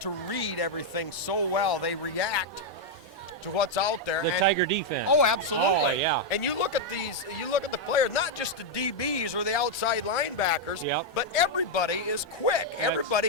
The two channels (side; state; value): both; normal; correlation -0.01